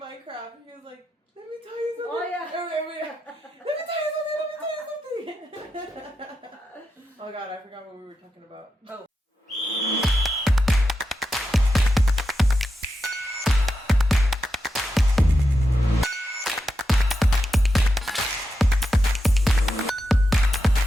he was like, "Let me tell you something." Oh, yeah. Let me tell you something. Let me tell you something. Oh God, I forgot what we were talking about. Oh.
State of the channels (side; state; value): both; normal; correlation 0.87